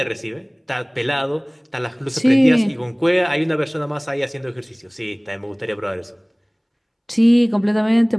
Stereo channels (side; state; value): both; identical; correlation 1.00